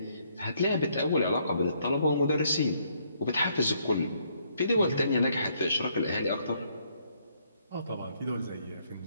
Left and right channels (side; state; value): both; inverted; correlation -0.70